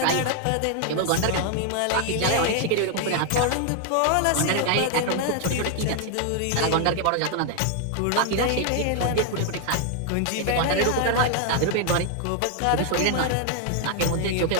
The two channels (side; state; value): both; different; correlation 0.00